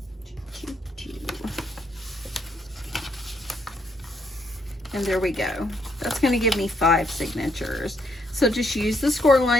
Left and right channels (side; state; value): both; normal; correlation 0.74